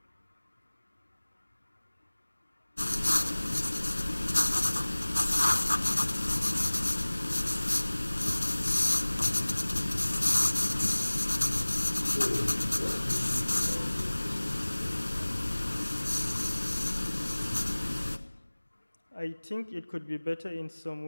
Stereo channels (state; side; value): inverted; both; correlation -1.00